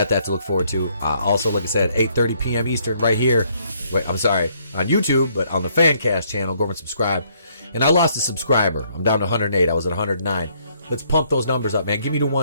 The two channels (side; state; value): both; inverted; correlation -0.68